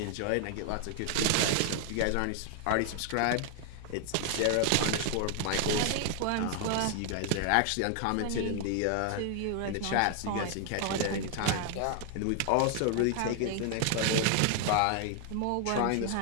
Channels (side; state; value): both; different; correlation 0.00